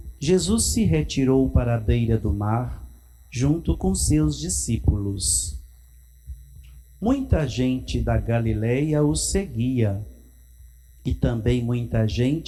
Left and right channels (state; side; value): identical; both; correlation 1.00